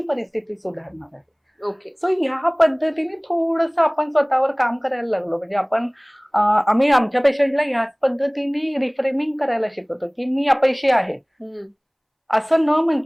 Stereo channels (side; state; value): both; identical; correlation 1.00